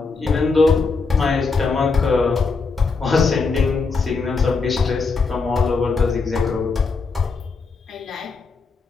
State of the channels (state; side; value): quieter; right; 4.4 dB